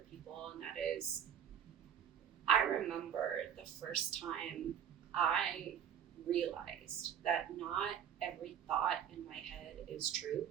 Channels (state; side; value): quieter; left; 9.0 dB